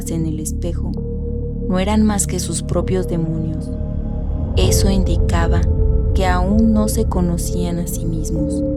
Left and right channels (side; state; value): both; identical; correlation 1.00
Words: en el espejo no eran más que sus propios demonios. Eso indicaba que aún no se conocían a sí mismos